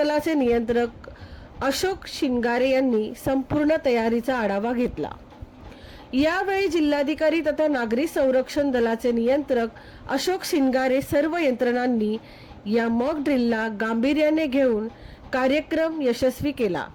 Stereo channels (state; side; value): identical; both; correlation 1.00